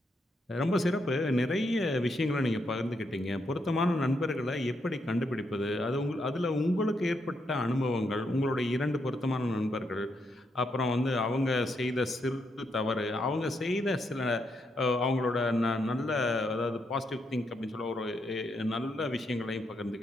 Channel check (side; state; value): both; normal; correlation 0.79